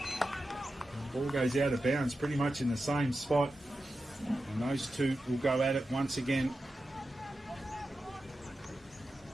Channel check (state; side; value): normal; both; correlation 0.91